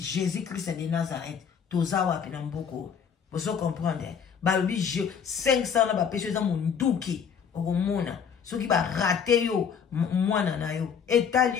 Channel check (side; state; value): right; quieter; 7.1 dB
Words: Christ de Nazareth toza wapi na mboko bozo comprendre balobi 500 na bapesi eza monduki okomona soki barate yo mwana na yo